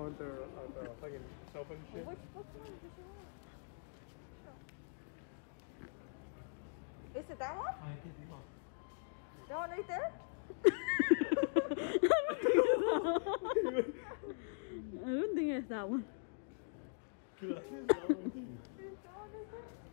on their fucking cell phone and shit? Is it that one? That one right there? I don't think it's that one. Is it that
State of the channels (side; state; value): right; silent; digital silence